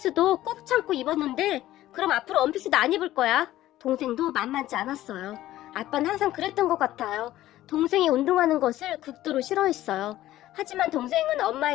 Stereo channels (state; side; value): quieter; right; 14.6 dB